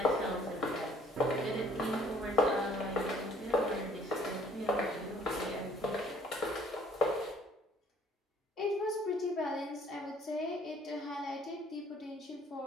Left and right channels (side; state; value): both; normal; correlation 0.59